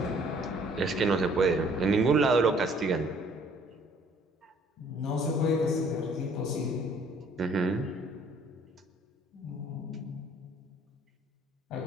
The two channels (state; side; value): normal; both; correlation 0.59